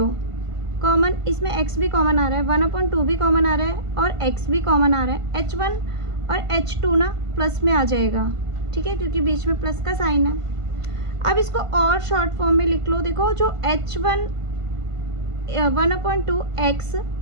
कॉमन, इसमें x भी कॉमन आ रहा है, 1/2 भी कॉमन आ रहा है, और x भी कॉमन आ रहा है। h1 और h2 ना प्लस में आ जाएगा। ठीक है, क्योंकि बीच में प्लस का साइन है। अब इसको और शॉर्ट फॉर्म में लिख लो। देखो जो h1 1/2 x,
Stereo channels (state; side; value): late; left; 1.5 ms